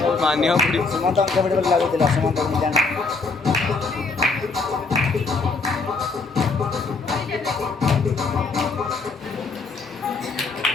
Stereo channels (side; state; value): right; quieter; 4.1 dB